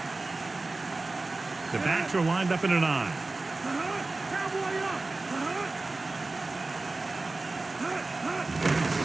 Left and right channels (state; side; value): quieter; left; 3.3 dB